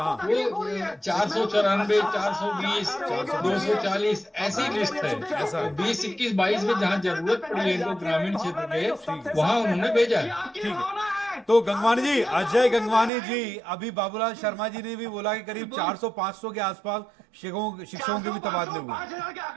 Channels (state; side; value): drops out; left; at 13.1 s